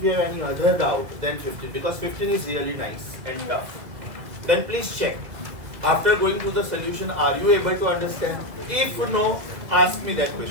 you have any other doubt, then 15, because 15 is really nice and tough. Then please check. After going through the solution, are you able to understand? If no, ask me that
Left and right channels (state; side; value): late; left; 2.0 ms